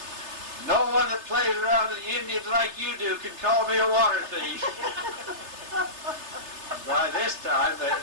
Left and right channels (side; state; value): left; late; 3.3 ms